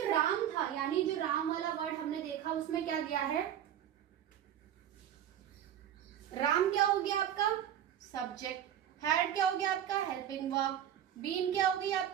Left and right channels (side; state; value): left; quieter; 10.4 dB